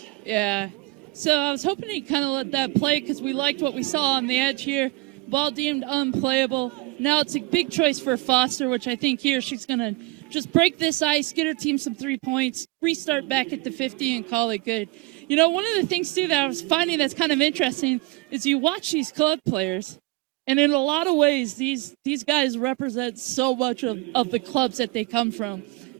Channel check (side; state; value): left; quieter; 22.2 dB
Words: Yeah. So I was hoping he'd kind of let that play because we liked what we saw on the edge here. Ball deemed unplayable. Now it's a big choice for Foster, which I think here she's going to just break this ice, get her team some 3 points, restart back at the 50 and call it good. You know, one of the things, too, that I was finding that's kind of interesting is you watch these club players, and in a lot of ways, these guys represent so much of the clubs that they come from.